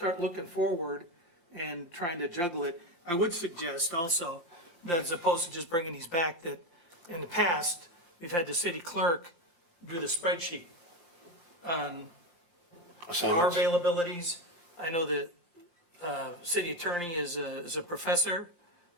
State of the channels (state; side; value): late; right; 18 ms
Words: looking forward and trying to juggle it. I would suggest also that as opposed to just bringing these back, that in the past, we've had the city clerk do the spreadsheet on our assignments. availabilities. I know that, city attorney is a professor,